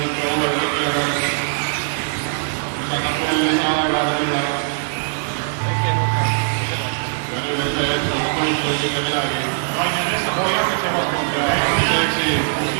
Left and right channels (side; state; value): left; silent; digital silence